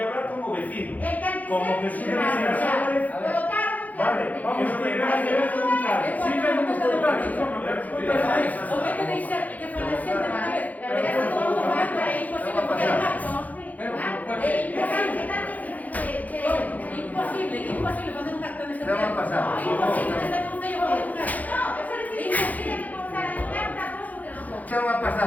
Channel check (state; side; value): late; right; 0.078 ms